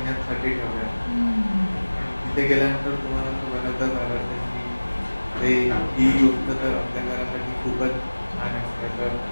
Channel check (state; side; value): inverted; both; correlation -1.00